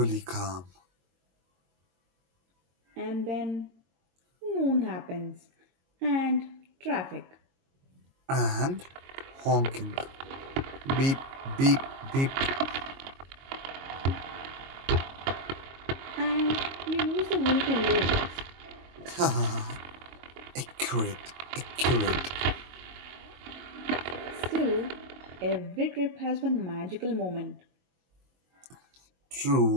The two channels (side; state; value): left; late; 22 ms